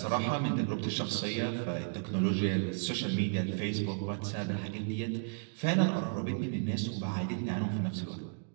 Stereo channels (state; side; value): silent; left; 55 dB below the other